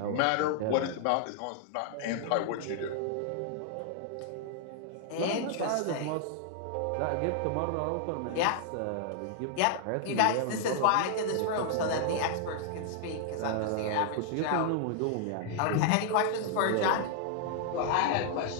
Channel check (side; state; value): both; different; correlation -0.01